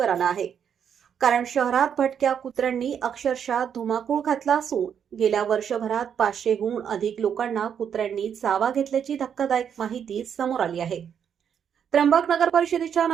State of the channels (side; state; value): left; quieter; 8.1 dB